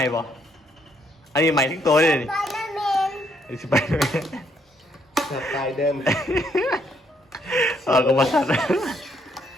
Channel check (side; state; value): both; normal; correlation 0.71